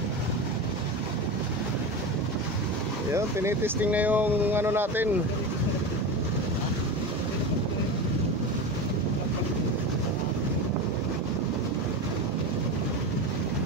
Yun, tinitesting na yung ano natin.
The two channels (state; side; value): normal; both; correlation 0.23